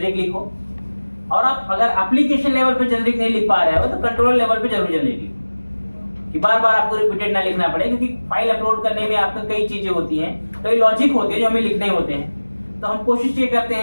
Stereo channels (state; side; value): inverted; both; correlation -1.00